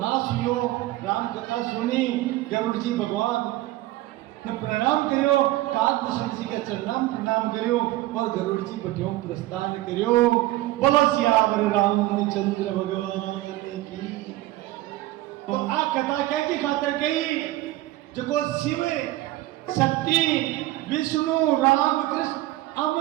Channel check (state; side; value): quieter; left; 16.8 dB